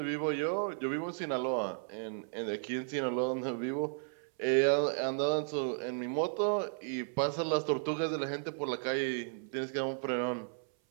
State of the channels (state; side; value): silent; left; 55 dB below the other